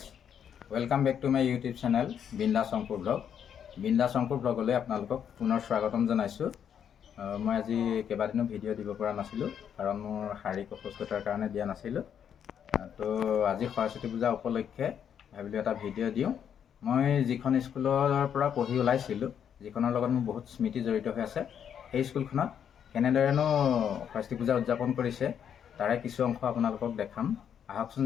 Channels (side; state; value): right; quieter; 8.5 dB